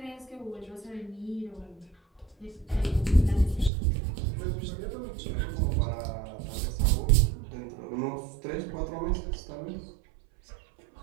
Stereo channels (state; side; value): drops out; left; at 3.7 s